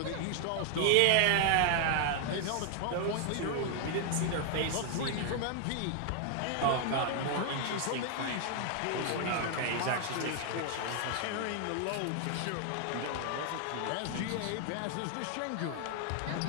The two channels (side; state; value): both; different; correlation 0.00